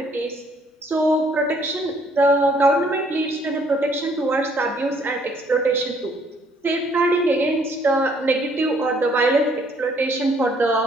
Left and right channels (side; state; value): both; normal; correlation 0.64